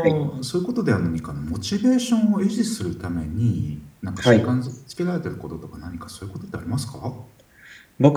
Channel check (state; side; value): identical; both; correlation 1.00